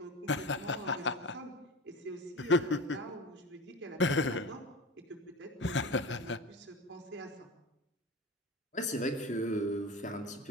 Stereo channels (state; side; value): normal; both; correlation 0.30